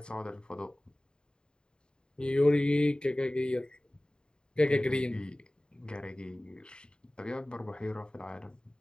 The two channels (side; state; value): right; late; 0.049 ms